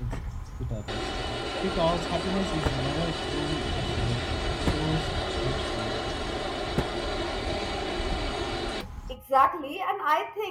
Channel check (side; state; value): both; identical; correlation 1.00